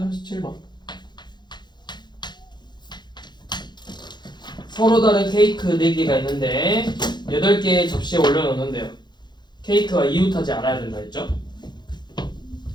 37번. 서로 다른 케이크 4개가 있는데 8개의 접시에 올려놓는데요. 케이크가 이웃하지 않아야 된다 했죠?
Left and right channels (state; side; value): late; right; 0.21 ms